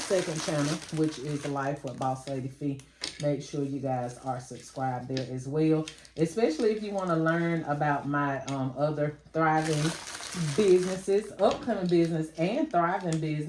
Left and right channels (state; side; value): identical; both; correlation 1.00